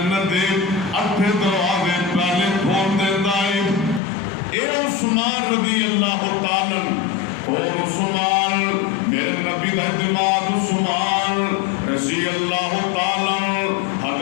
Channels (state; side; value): drops out; right; at 4.0 s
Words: دے 8 دروازے پہلے کھول دیندا ہے اے عثمان رضی اللہ تعالی اور عثمان میرے نبی دا اعتماد عثمان رضی اللہ تعالی